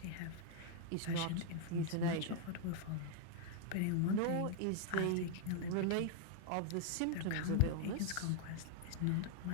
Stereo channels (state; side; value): different; both; correlation -0.01